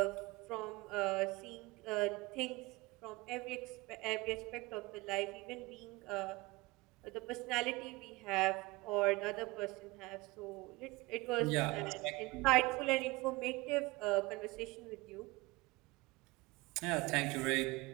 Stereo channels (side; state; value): left; quieter; 22.5 dB